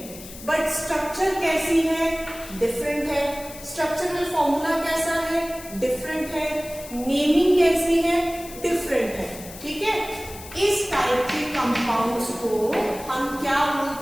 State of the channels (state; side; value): noise; left; hiss, 15 dB below the sound